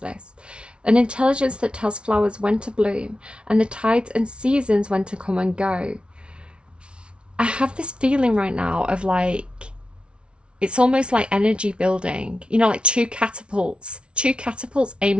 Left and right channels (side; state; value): left; late; 0.058 ms